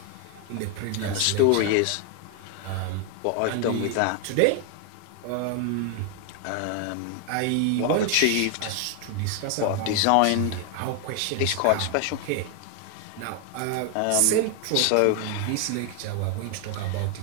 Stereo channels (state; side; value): different; both; correlation 0.00